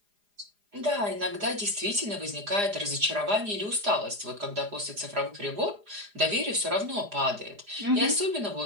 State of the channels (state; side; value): late; left; 4.9 ms